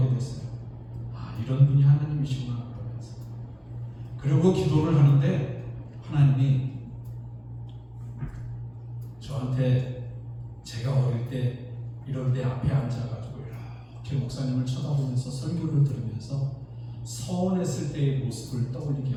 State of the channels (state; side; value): identical; both; correlation 1.00